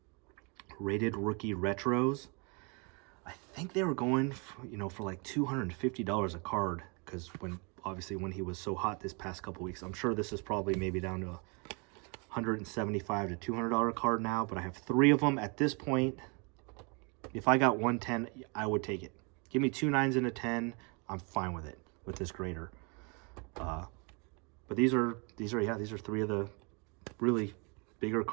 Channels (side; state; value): left; quieter; 32.7 dB